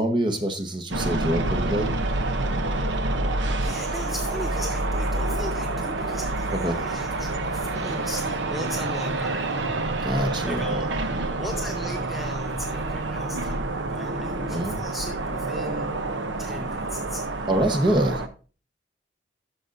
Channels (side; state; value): both; normal; correlation 0.39